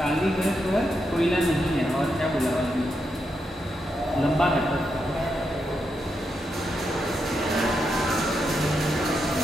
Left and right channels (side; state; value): both; normal; correlation 0.84